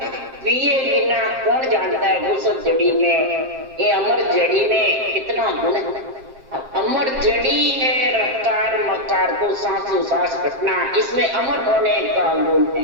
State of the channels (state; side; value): late; left; 7.6 ms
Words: पिए बिना कौन जानता है औषध जड़ी में, ये अमर जड़ी में कितना गुण है। अमर जड़ी है रफ्तार मकार को सांसों सांस घटना, इसमें अमर होने का गुण